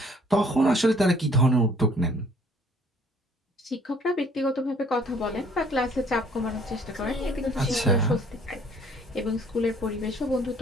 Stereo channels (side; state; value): both; normal; correlation 0.59